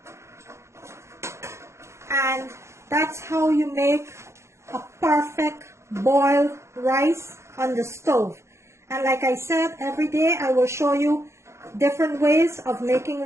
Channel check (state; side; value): late; left; 0.13 ms